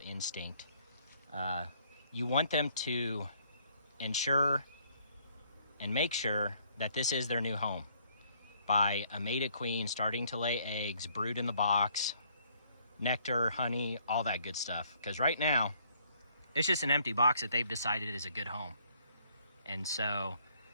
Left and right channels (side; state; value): both; inverted; correlation -0.65